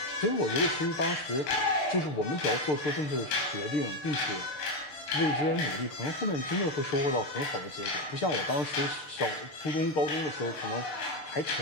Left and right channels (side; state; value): right; late; 6.7 ms